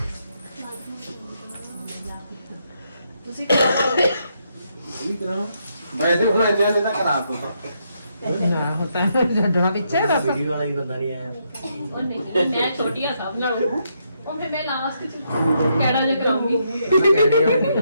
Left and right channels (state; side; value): inverted; both; correlation -0.77